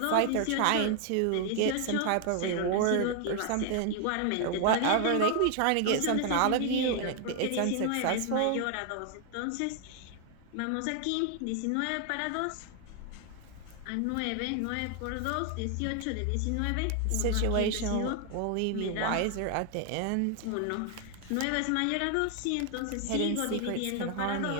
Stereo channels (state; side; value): different; both; correlation 0.00